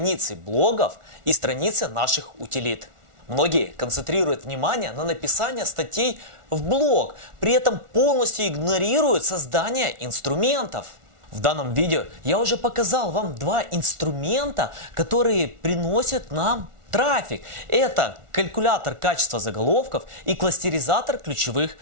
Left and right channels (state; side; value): late; left; 1.4 ms